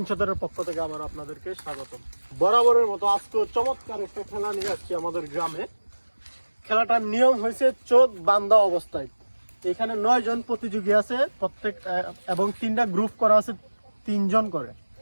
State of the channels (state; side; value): inverted; both; correlation -1.00